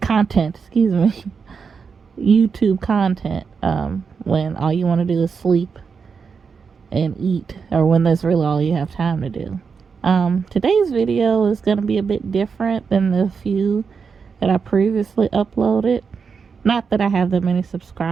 excuse me, YouTube content, when all you want to do is sleep and eat, or when that's really all you have time to do. Today's video is going to be a bit different than the few that I previously uploaded. Not that I have that many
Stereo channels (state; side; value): quieter; left; 5.7 dB